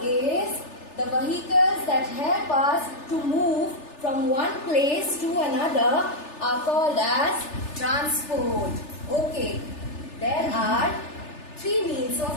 is the vehicles that help us to move from one place to another are called as transport. Okay, there are three means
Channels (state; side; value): late; right; 3.4 ms